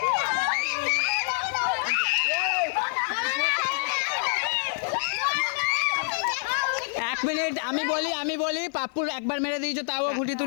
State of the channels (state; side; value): silent; right; 60 dB below the other